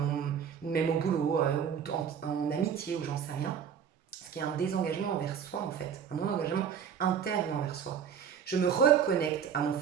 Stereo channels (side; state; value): left; quieter; 7.8 dB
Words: même au boulot ou en amitié ou j'en sais rien. Ce qui est un désengagement envers soi en fait, un non-engagement interne envers soi. Je me reconnecte à mon